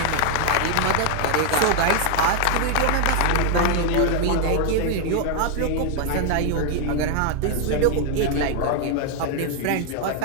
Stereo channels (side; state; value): both; different; correlation 0.00